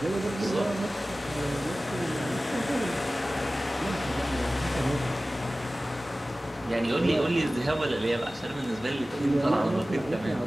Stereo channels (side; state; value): both; normal; correlation 0.97